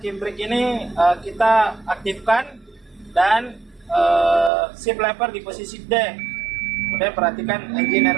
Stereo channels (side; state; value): left; drops out; at 4.5 s